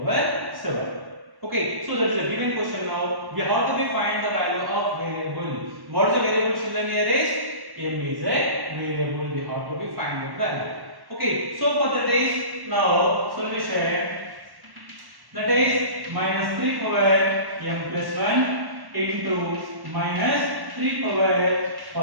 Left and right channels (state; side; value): late; left; 1.1 ms